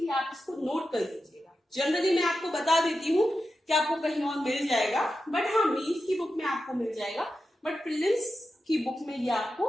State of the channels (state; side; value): normal; both; correlation 0.90